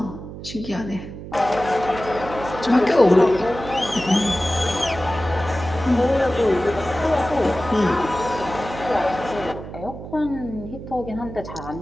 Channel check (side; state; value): right; noise; hum, 11 dB below the sound